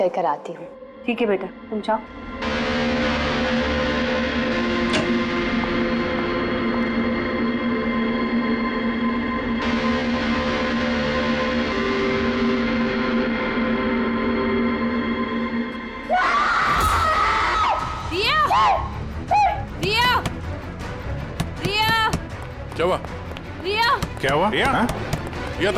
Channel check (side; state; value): both; identical; correlation 1.00